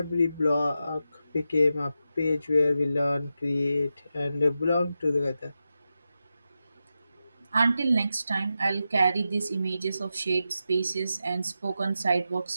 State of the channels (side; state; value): both; inverted; correlation -0.89